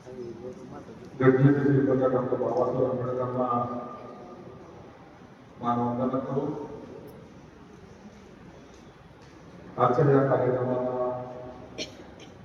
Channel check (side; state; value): both; identical; correlation 1.00